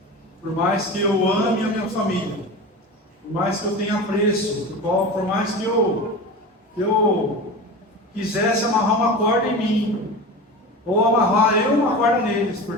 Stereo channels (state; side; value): normal; both; correlation 0.30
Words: Por mais que eu ame a minha família, por mais que eu tenha apreço, por mais que eu quisesse amarrar uma corda em mim, ou amarrar eu uma corda neles,